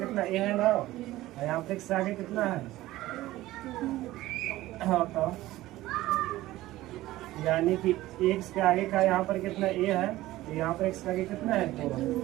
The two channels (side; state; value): left; quieter; 16.5 dB